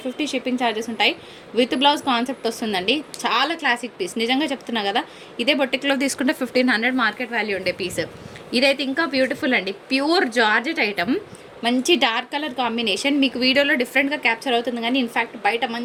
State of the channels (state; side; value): identical; both; correlation 1.00